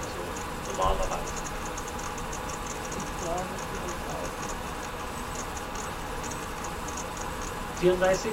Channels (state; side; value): identical; both; correlation 1.00